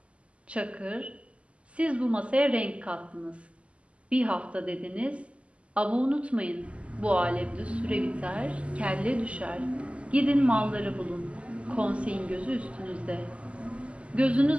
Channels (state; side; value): late; left; 0.058 ms